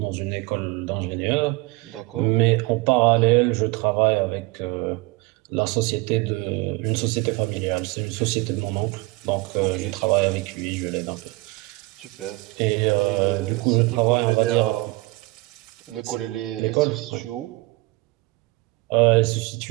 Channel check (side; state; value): left; quieter; 22.9 dB